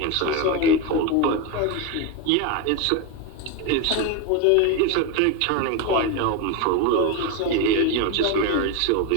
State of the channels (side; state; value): both; different; correlation 0.03